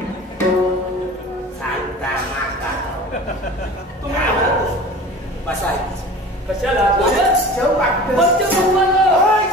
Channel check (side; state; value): both; normal; correlation 0.39